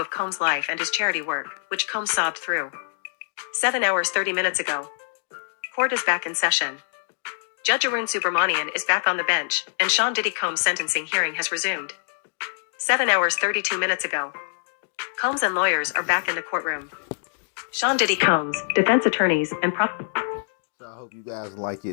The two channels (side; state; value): right; silent; digital silence